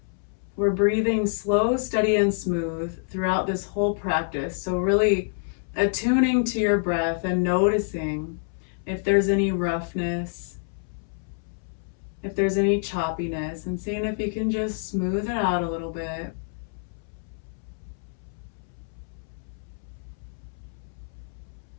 We're breathing slow, steady, and smooth throughout this whole practice. So really attuning to your breath and noticing if there's any roughness, if there's any choppiness, and seeing if you can just smooth it out a little bit.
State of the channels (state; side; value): silent; right; 60 dB below the other